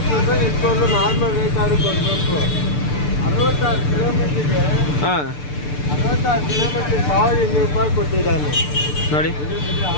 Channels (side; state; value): right; late; 6.8 ms